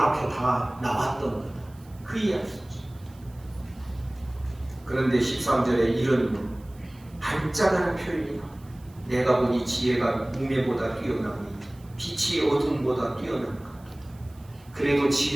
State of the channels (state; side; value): noise; right; hiss, 28 dB below the sound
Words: 다 나왔던 거다. 그 이야기죠. 그런데 13절에 이런 반짝하는 표현이 나옵니다. 내가 보니 지혜가 우매보다 뛰어나니 빛이 어둠보다 뛰어난 것. 그래도